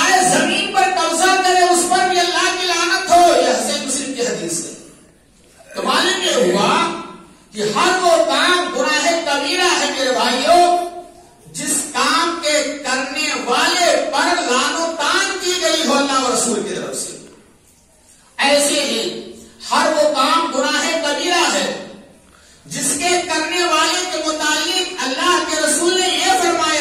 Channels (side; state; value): both; identical; correlation 1.00